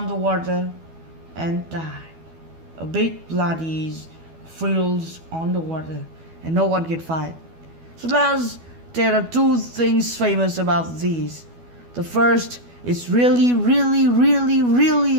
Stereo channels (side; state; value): left; late; 12 ms